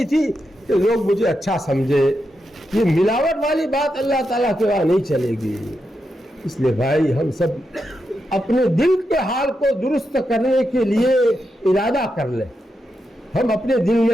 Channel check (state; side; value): normal; both; correlation 0.86